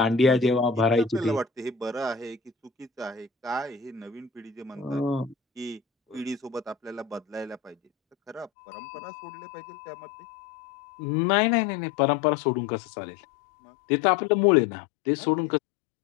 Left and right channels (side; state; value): right; drops out; at 8.5 s